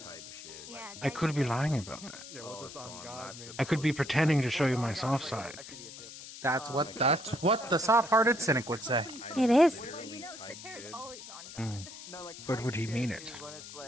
Yeah, I could be lying about that. Yeah, what's this on God mean? I could be pretending to show you my soft side. That's what the soft-hearted cynic would say. It is. Well, Sater's always on God. No, like, But would he mean it? When it's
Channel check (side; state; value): left; noise; hiss, 13 dB below the sound